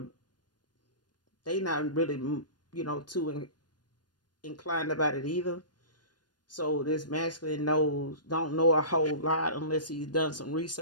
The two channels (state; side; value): late; right; 0.70 ms